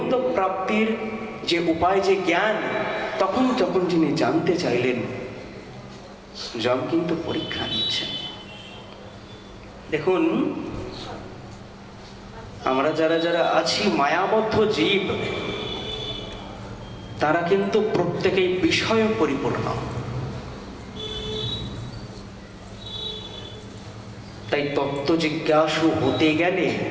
প্রাপ্তির যে উপায়, যে জ্ঞান, তখন যখন যিনি জানতে চাইলেন, যম কিন্তু পরীক্ষা নিচ্ছেন। দেখুন, আমরা যারা যারা আছি মায়াবদ্ধ জীব, তারা কিন্তু প্রত্যেকেই বিষয় পরিপূর্ণ। তাই তত্ত্ব জিজ্ঞাসু হতে গেলে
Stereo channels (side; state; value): both; identical; correlation 1.00